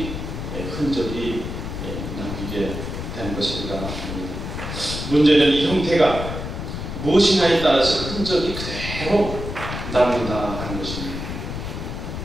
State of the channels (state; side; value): noise; left; rumble, 6 dB below the sound